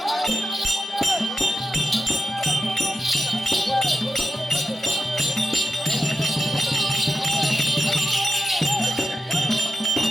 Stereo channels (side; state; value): both; normal; correlation 0.89